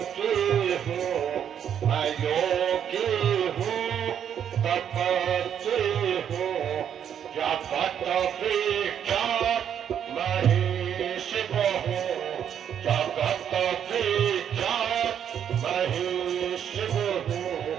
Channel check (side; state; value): left; quieter; 8.9 dB